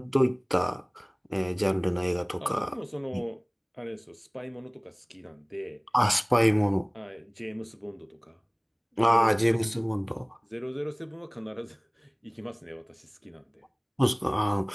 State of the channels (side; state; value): both; identical; correlation 1.00